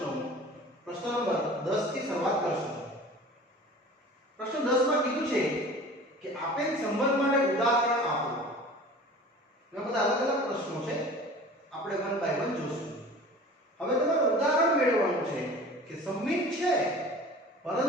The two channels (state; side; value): normal; both; correlation 0.41